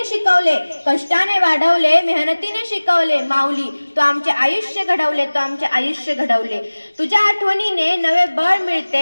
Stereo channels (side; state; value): both; inverted; correlation -1.00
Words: शिकवले, कष्टाने वाढवले, मेहनतीने शिकवले. माऊली तू आमचे आयुष्य घडवले, तू आमचे आयुष्य घडवले. तुझ्या आठवणीने नवे बळ